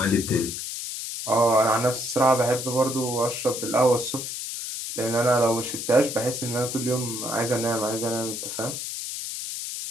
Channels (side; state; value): left; noise; hiss, 6 dB below the sound